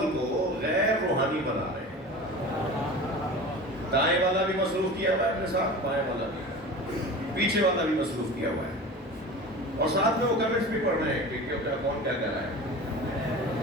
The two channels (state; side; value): normal; both; correlation 0.35